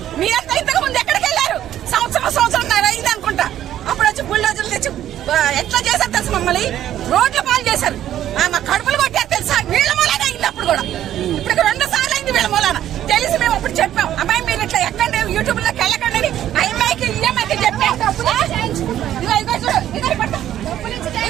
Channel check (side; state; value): left; quieter; 11.7 dB